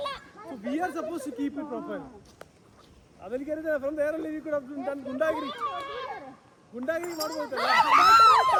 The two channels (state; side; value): identical; both; correlation 1.00